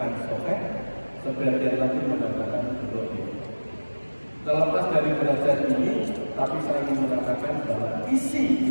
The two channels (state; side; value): inverted; both; correlation -1.00